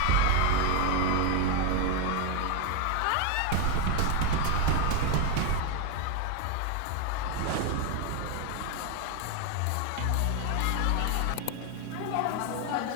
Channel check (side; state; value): both; different; correlation 0.01